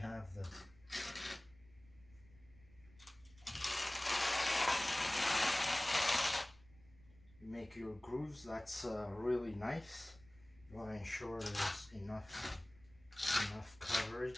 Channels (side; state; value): right; noise; rumble, 25 dB below the sound